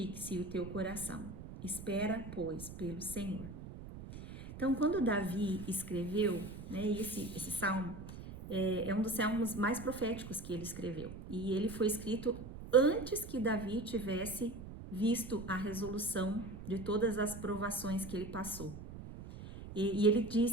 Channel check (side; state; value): right; noise; rumble, 12 dB below the sound